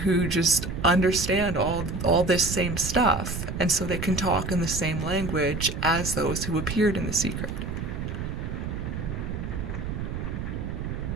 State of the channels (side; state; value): right; noise; rumble, 4 dB below the sound